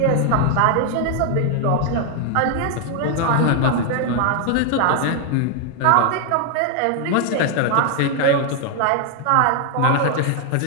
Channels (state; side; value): different; both; correlation 0.00